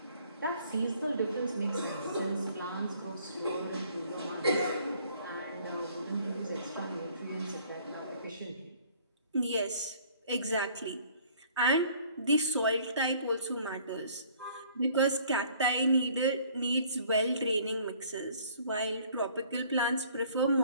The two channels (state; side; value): inverted; both; correlation -0.57